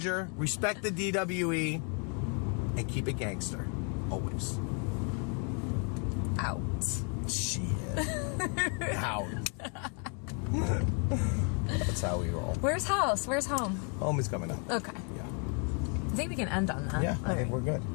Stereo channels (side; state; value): right; quieter; 38.9 dB